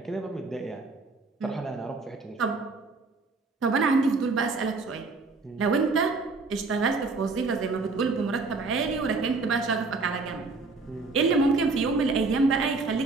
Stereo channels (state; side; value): quieter; left; 3.8 dB